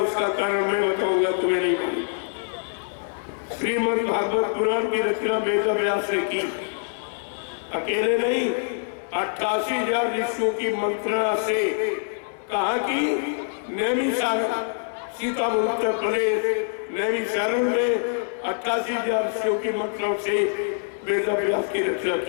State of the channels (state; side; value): silent; right; digital silence